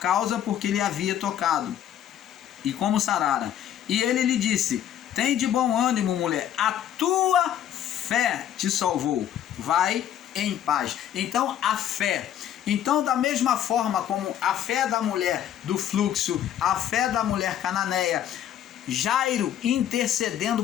porque lhe havia tocado, e como sarara. E ele lhe disse: tem de bom ânimo, mulher, a tua fé te salvou, vai em paz. Então a fé. Então, da mesma forma como a fé da mulher do fluxo, a fé da mulher cananeia, Jairo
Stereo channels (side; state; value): right; quieter; 10.6 dB